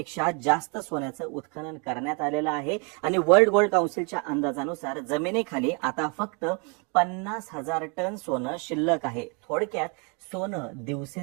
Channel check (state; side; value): quieter; left; 34.7 dB